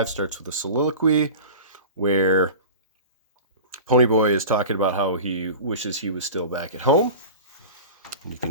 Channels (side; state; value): both; inverted; correlation -0.35